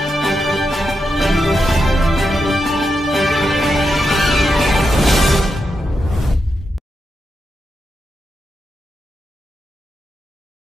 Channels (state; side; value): normal; both; correlation 0.86